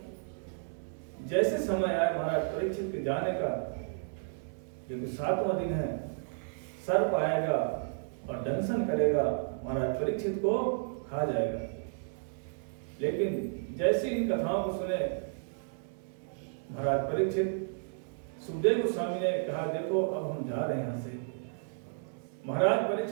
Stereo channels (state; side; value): silent; left; digital silence